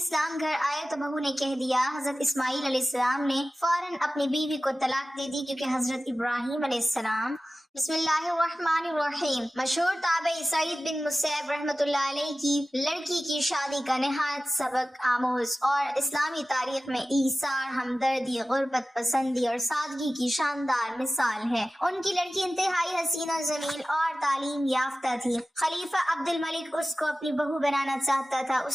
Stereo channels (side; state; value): both; normal; correlation 0.95